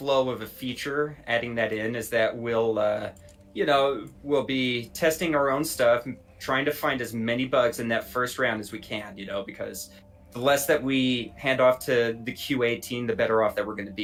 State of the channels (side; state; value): both; identical; correlation 1.00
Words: of a feature, adding that in is that we'll, you know, we'll be testing our own stuff, trying to find as many bugs in that first round as we can, you know, because the less that we hand off to the QA team, the better off that we're going to